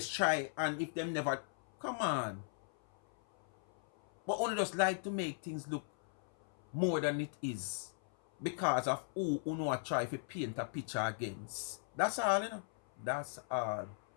try, and if them never, come on. But only just like to make things look more than it is because of who know try to paint a picture against. That's all, you know. That's all.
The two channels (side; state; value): right; silent; 52 dB below the other